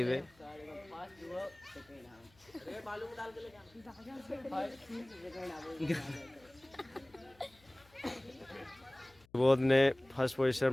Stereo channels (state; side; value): noise; left; hum, 29 dB below the sound